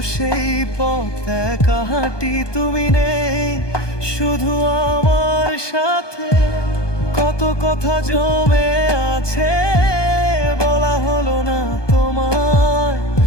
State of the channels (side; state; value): right; late; 1.2 ms